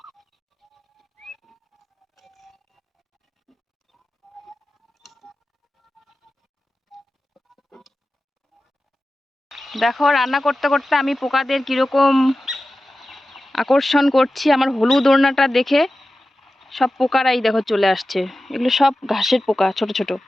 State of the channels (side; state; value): both; normal; correlation 0.94